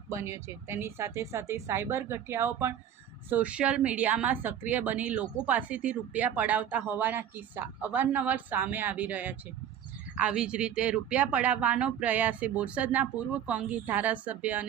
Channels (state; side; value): quieter; left; 9.7 dB